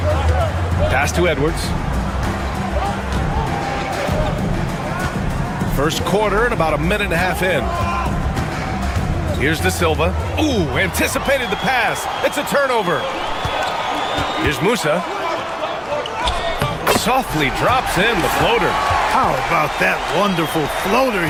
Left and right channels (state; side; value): identical; both; correlation 1.00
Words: Pass to Edwards. First quarter and about a minute and a half in. Here's De Silva. Ooh, anticipated the pass. It's a turnover. Here's Musa. Softly drops in the floater. How about that wonderful floater